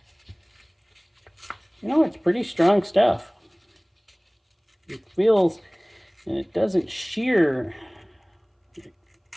You know, it's pretty strong stuff. It feels, and it doesn't shear.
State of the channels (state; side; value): identical; both; correlation 1.00